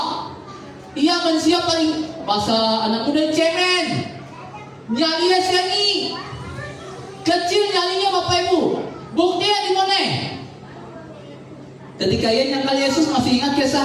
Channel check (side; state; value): both; identical; correlation 1.00